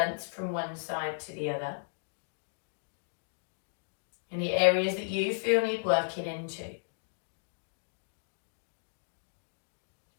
from one side to the other. Any areas that you feel need working into.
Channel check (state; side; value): silent; right; digital silence